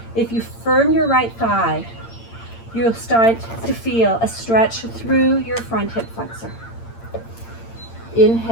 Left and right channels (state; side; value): late; right; 8.8 ms